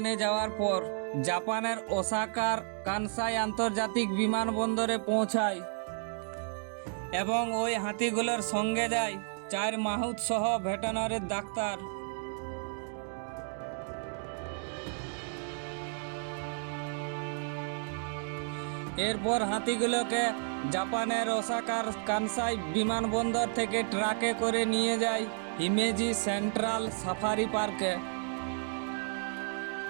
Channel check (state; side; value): silent; left; 56 dB below the other